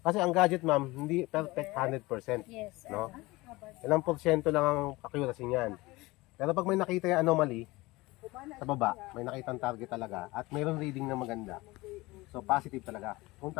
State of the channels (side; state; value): right; quieter; 21.3 dB